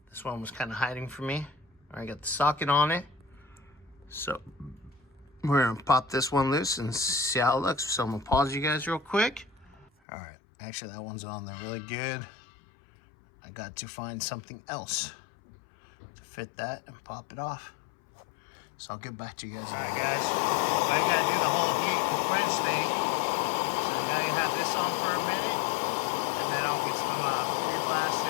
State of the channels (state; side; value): drops out; right; at 9.9 s